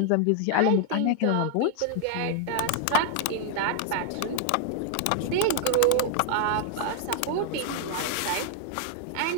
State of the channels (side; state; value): both; different; correlation 0.00